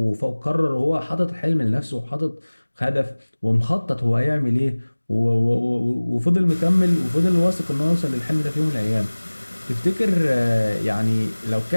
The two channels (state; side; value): inverted; both; correlation -1.00